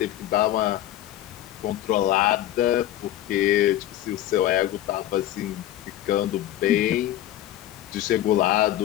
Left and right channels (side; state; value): right; quieter; 13.2 dB